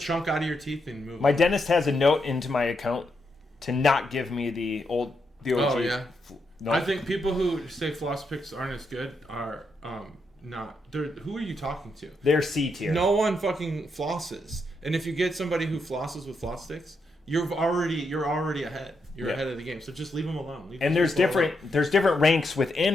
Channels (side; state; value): both; normal; correlation 0.81